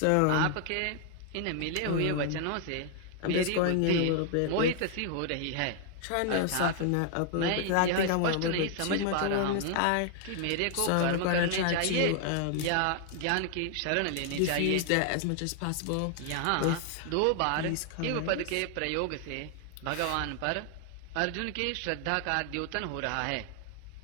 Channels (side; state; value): both; different; correlation 0.00